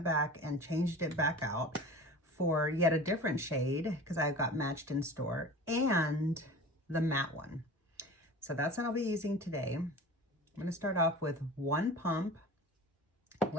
back and changed it back out for yet a different shade, because I got matched in store, and the matte one. So that's what I'll be using today. I'm going to start off with one pump.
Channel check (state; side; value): normal; both; correlation 0.37